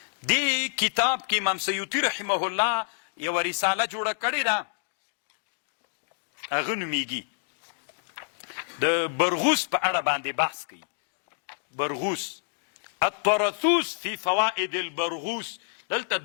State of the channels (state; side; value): silent; right; digital silence